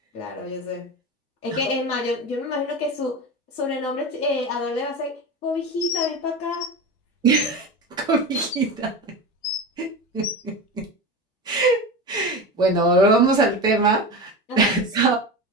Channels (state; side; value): normal; both; correlation 0.25